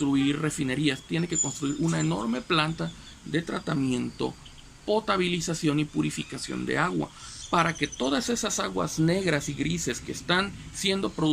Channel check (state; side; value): identical; both; correlation 1.00